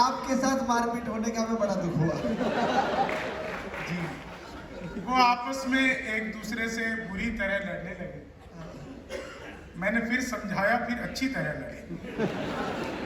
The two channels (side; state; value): both; identical; correlation 1.00